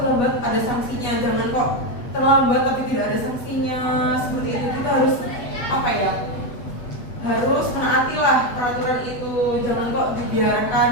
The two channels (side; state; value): right; late; 8.3 ms